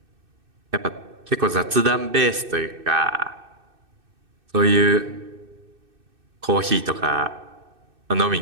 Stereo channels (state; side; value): late; left; 2.6 ms